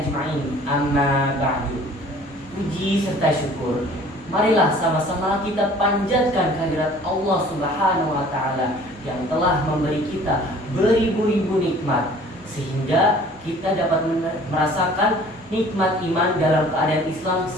Amma ba'du. Puji serta syukur, marilah sama-sama kita panjatkan kehadirat Allah Subhanahu wa Ta'ala yang telah memberi kita beribu-ribu nikmat, sehingga kita dapat merasakan nikmat iman dalam keadaan Islam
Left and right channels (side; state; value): both; normal; correlation 0.50